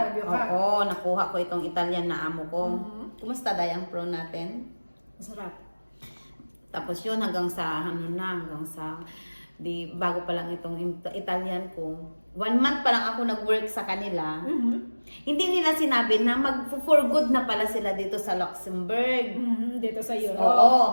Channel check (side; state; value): both; inverted; correlation -1.00